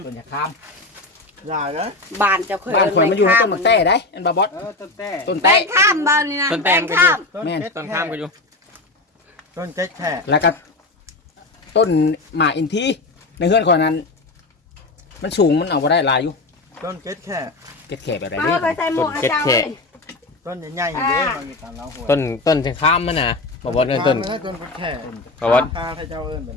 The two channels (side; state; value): right; quieter; 3.2 dB